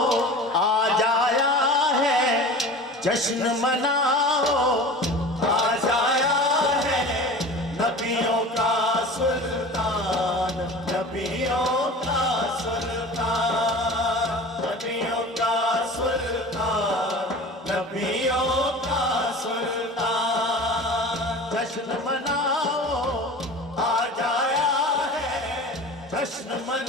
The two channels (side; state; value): both; normal; correlation 0.37